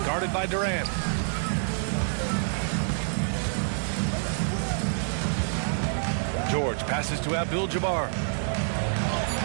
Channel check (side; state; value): left; silent; digital silence